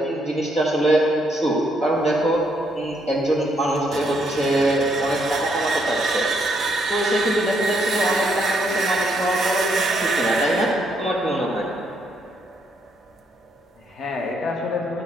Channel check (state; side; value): normal; both; correlation 0.74